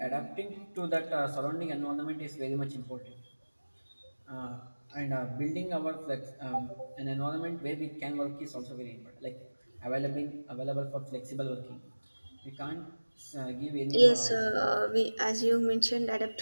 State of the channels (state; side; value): inverted; both; correlation -1.00